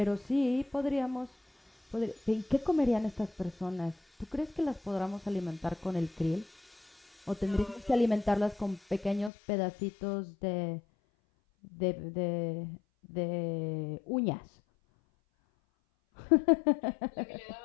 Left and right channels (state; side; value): drops out; right; at 9.3 s